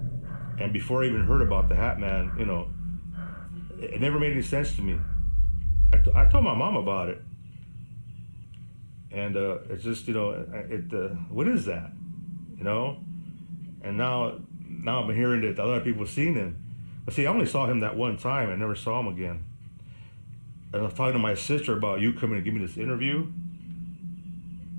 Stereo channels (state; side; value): inverted; both; correlation -1.00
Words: And before I even heard about the Hat Man, it never made any sense to me. I told my mom about it. And it's just, what is that? And now I'm hearing that a lot of people have seen him. But see, I only saw him that one time. I never saw him again. And I was talking to my sister about you coming to give me this interview.